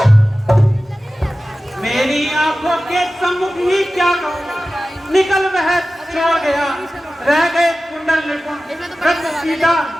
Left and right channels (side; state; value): both; normal; correlation 0.95